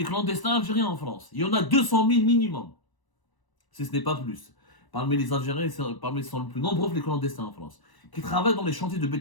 clandestins algériens en France, il y en a 200 000 minimum. Si ce n'est pas plus. Parmi les Algériens, ils sont les plus nombreux les clandestins en France, qui travaillent dans les chantiers de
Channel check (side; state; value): right; late; 1.0 ms